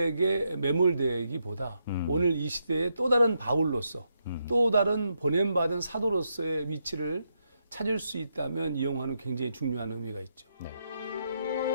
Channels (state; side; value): inverted; both; correlation -0.81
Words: 매몰되기보다 오늘 이 시대의 또 다른 바울로서 또 다른 보냄받은 사도로서의 위치를 찾을 수 있다면 이 영화는 굉장히 중요한 의미가 있죠. 네.